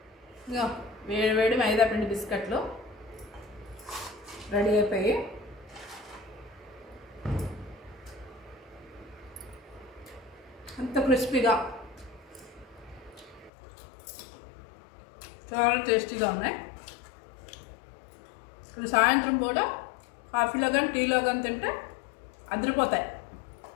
ఇంకా వేడి వేడి మైదా పిండి బిస్కెట్లు రెడీ అయిపోయి అంత క్రిస్పీగా చాలా టేస్టీగా ఉన్నాయి. ఇప్పుడు సాయంత్రం పూట కాఫీలో కానీ టీలో కానీ తింటే అదిరిపోతాయి.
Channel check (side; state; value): right; drops out; at 13.5 s